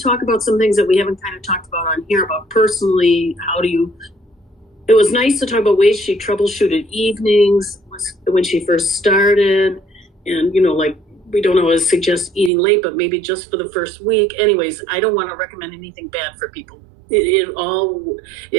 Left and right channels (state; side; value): drops out; left; at 12.5 s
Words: about some things that we haven't kind of talked about on here about personally, it was nice to talk about ways she troubleshooted evenings when she first started. And, we don't always suggest eating late, but maybe just for the first week. Anyways, I don't want to recommend anything bad for people.